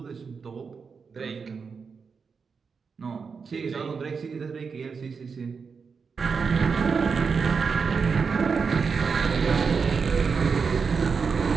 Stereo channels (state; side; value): quieter; left; 5.5 dB